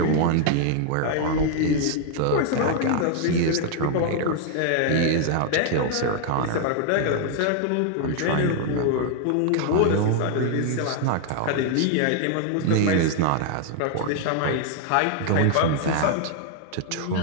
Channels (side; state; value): both; different; correlation 0.00